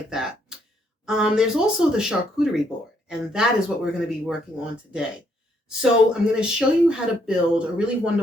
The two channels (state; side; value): normal; both; correlation 0.72